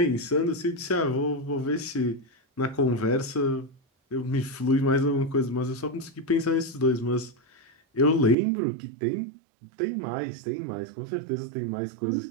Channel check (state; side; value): drops out; left; at 8.3 s